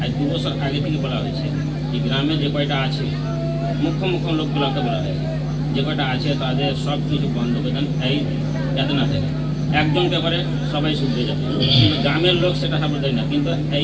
আজ 2 বছর আগে থেকে বলা হয়েছে, এই গ্রামে যে কয়টা আছে মুখ্য লোকগুলোকে বলা হয়েছে, যে কয়টা আছে তাদের সব কিছু বন্ধ করে দেন, এই যাতে না থাকে। একজনকে করে সবাই শুনতে যাবে, কিন্তু গ্রামের লোক সেটা সাপোর্ট দেয় না, কিন্তু এই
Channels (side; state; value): both; identical; correlation 1.00